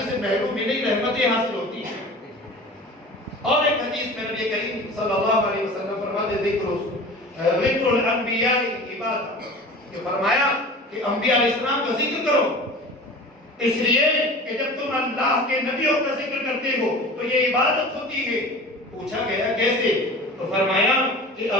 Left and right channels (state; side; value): normal; both; correlation 0.38